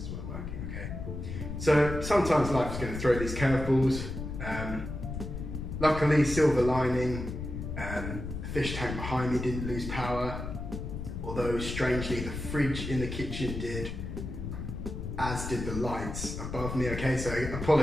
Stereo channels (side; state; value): left; noise; rumble, 6 dB below the sound